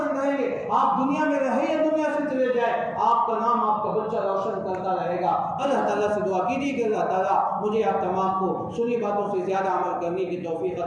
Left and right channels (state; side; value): identical; both; correlation 1.00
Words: کریں گے، آپ دنیا میں رہے یا دنیا سے چلے جائے، آپ کا نام آپ کا بچہ روشن کرتا رہے گا۔ اللہ تعالیٰ سے دعا کیجیے کہ اللہ تعالیٰ مجھے آپ تمام کو سنی باتوں سے زیادہ عمل کرنے کی توفیق